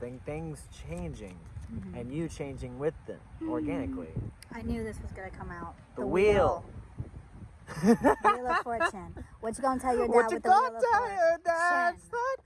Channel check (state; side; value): identical; both; correlation 1.00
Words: things changing, and you changing with them organically. I knew this was gonna come out. The wheel. Wheel of Fortune. What you gonna tell your dad What you with the gonna Wheel of tell Fortune? your dad? It's